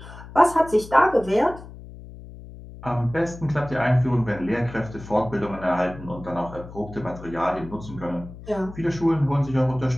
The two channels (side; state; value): left; noise; hum, 15 dB below the sound